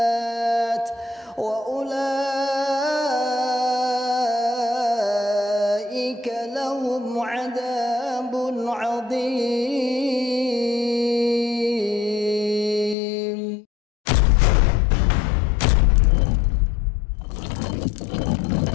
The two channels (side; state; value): right; drops out; at 13.0 s